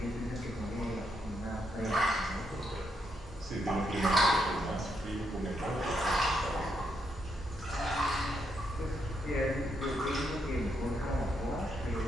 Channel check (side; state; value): both; normal; correlation 0.79